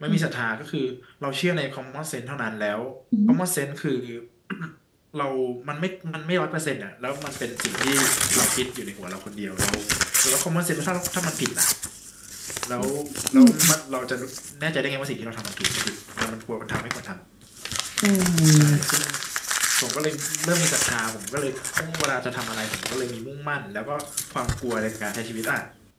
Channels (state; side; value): identical; both; correlation 1.00